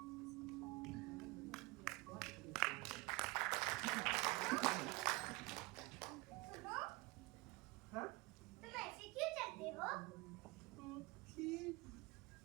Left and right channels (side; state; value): left; quieter; 23.3 dB